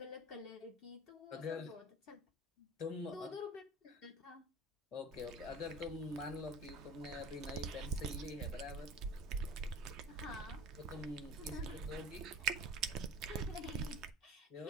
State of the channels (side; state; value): both; normal; correlation 0.40